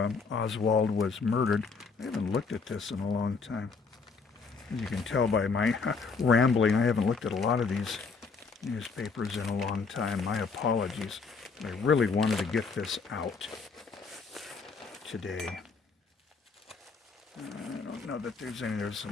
Oswald was murdered. I haven't looked at this in a long time. As you can tell by my rambling, I haven't looked at a lot of these newspapers in a long time. My apologies. I really wanted to get this out today. I don't know that there's any. There's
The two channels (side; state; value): right; quieter; 4.8 dB